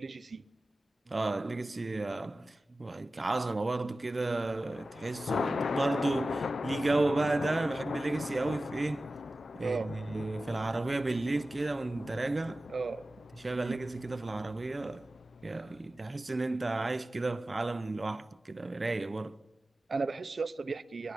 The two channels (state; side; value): normal; both; correlation 0.95